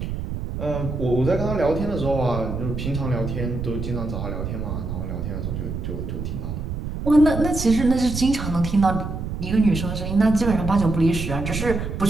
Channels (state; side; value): noise; right; rumble, 5 dB below the sound